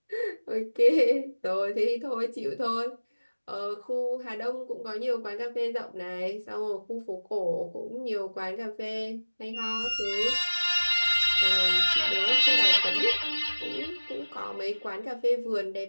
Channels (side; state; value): both; inverted; correlation -1.00